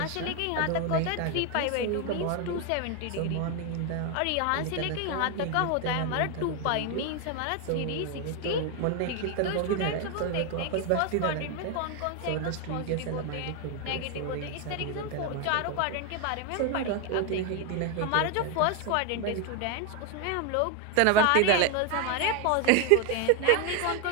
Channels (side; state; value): both; different; correlation 0.01